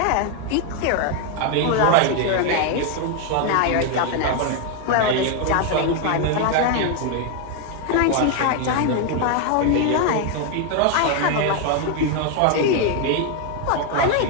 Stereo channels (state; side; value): different; both; correlation 0.01